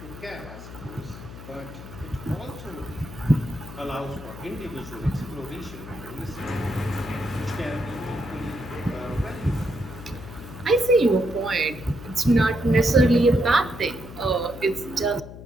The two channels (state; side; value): noise; left; hum, 13 dB below the sound